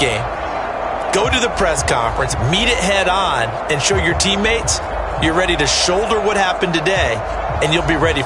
go to the press conference, meet it head on, and show your teammates you're ready to shoulder what happened today, and you'll be ready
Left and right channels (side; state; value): both; identical; correlation 1.00